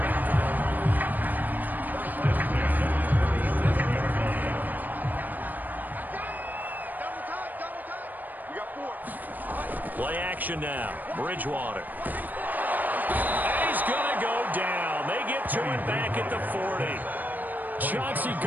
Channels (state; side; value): late; left; 0.085 ms